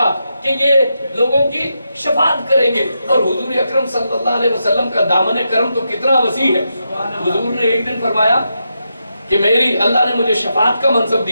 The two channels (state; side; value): inverted; both; correlation -0.85